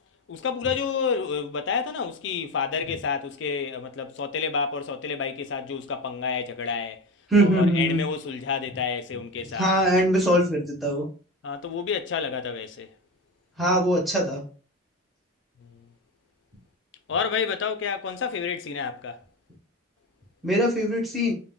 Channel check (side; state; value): both; normal; correlation 0.24